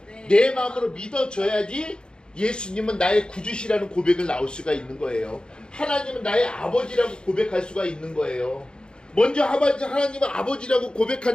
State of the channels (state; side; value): late; right; 0.049 ms